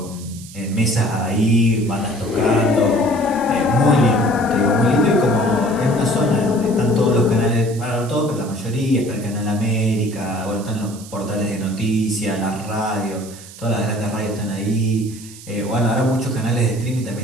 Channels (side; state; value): right; noise; hiss, 17 dB below the sound